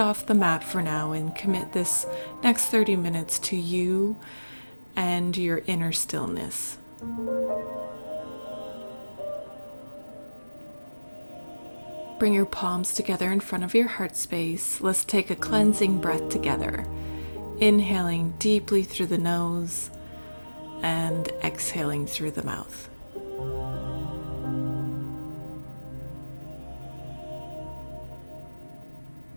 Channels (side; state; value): both; inverted; correlation -1.00